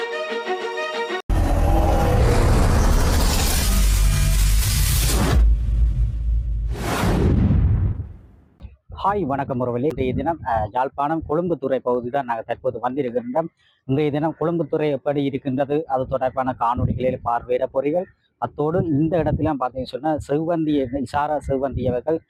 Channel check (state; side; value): identical; both; correlation 1.00